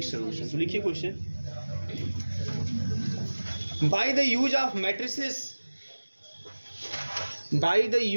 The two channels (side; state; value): both; inverted; correlation -1.00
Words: सॉल्यूशन। तो लिखिए question, by the use of matrices, by the